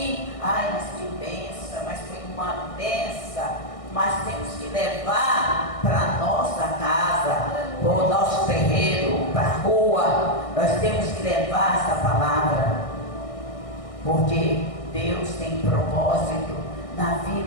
mas que benção, mas foi uma benção. Mas temos que levar para a nossa casa, para o nosso terreiro, para a rua. Nós temos que levar essa palavra. Porque Deus tem propósito na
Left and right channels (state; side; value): late; right; 1.6 ms